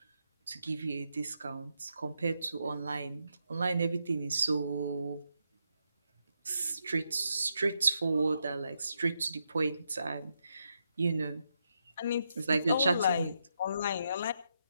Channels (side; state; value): both; inverted; correlation -0.82